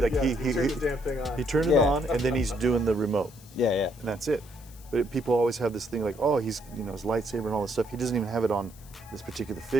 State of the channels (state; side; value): noise; left; hiss, 23 dB below the sound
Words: the damn thing on. He turned it on, and then he's doing the remote. Yeah, yeah. And that's it. But people always have this thing like, oh, he's his lightsaber and all this stuff. He doesn't even have it on this particular